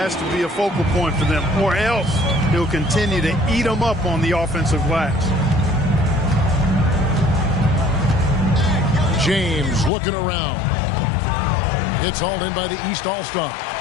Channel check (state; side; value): drops out; right; at 9.9 s